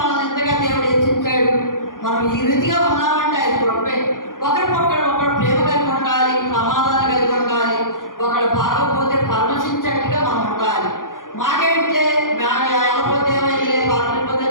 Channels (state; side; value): late; right; 0.89 ms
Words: ఎంతగా దేవుడు హెచ్చించాడు. మనం ఈ రీతిగా ఉన్నామంటే ఆయన కృపే. ఒకరు ప్రేమ కలిగి ఉండాలి, సమాధానం కలిగి ఉండాలి. ఒకడు బాగోపోతే పరమశించేట్టుగా మనం ఉండాలి. మాకేంటే వెళ్ళపోతే ఏమైతే బాగలేకపోతే